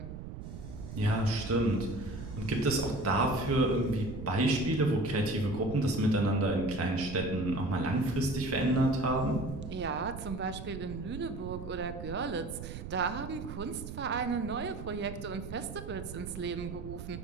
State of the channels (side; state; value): right; noise; rumble, 9 dB below the sound